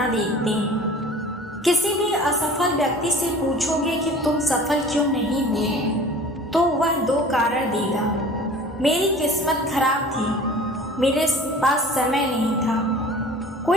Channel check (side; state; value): both; normal; correlation 0.44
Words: देखते हैं। किसी भी असफल व्यक्ति से पूछोगे कि तुम सफल क्यों नहीं हुए, तो वह दो कारण देगा। मेरी किस्मत खराब थी, मेरे पास समय नहीं था।